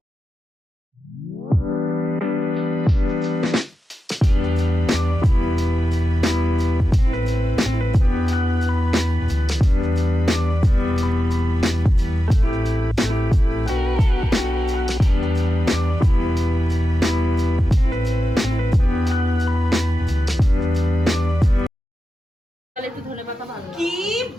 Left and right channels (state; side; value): normal; both; correlation 0.90